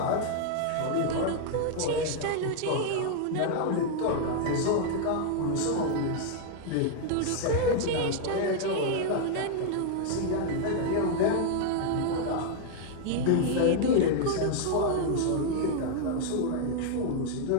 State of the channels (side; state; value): both; different; correlation 0.00